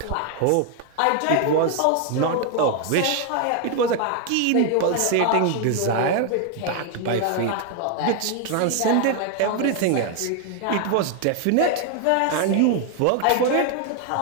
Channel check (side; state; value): both; different; correlation 0.00